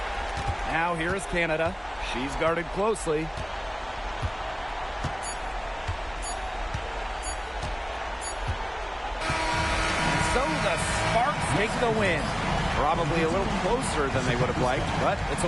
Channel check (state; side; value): identical; both; correlation 1.00